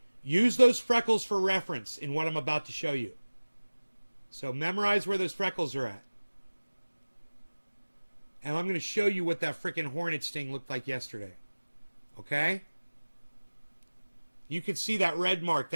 Use those freckles for reference in what I'm about to show you. So memorize where those freckles are at. And I'm going to show you what that freaking hornet sting looked like yesterday. Okay? You can see that red mark.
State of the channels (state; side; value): inverted; both; correlation -1.00